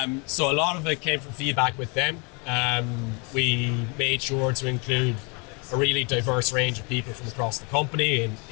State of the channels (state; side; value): quieter; right; 32.2 dB